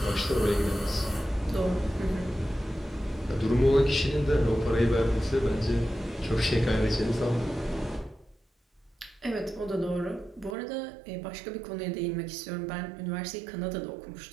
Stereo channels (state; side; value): drops out; left; at 10.6 s